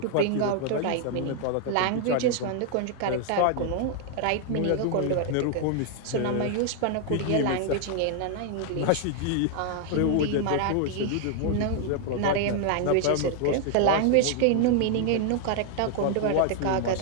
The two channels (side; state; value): both; different; correlation 0.00